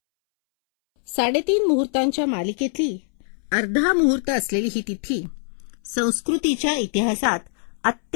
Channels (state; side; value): silent; right; 63 dB below the other